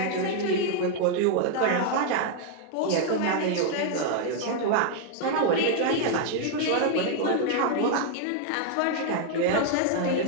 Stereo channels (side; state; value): both; different; correlation 0.00